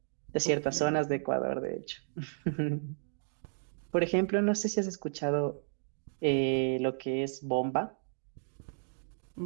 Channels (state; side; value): silent; left; digital silence